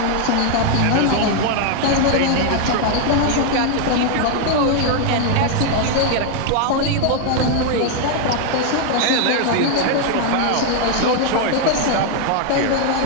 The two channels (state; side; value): different; both; correlation 0.00